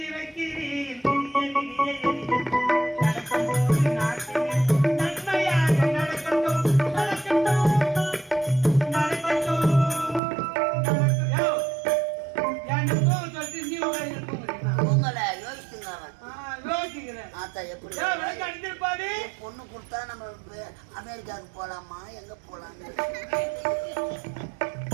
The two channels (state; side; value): drops out; left; at 10.2 s